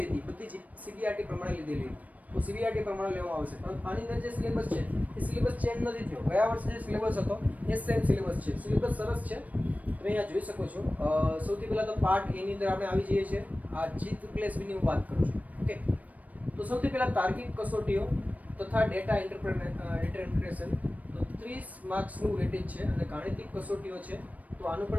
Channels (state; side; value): late; left; 0.072 ms